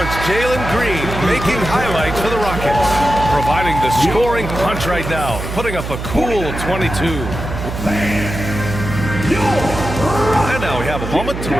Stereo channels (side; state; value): right; noise; hum, 6 dB below the sound